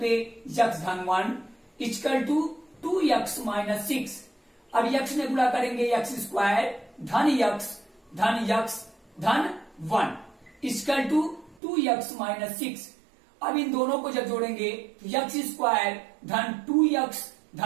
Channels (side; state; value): left; drops out; at 11.6 s